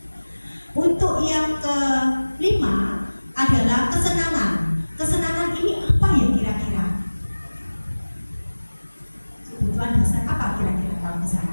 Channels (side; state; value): both; inverted; correlation -1.00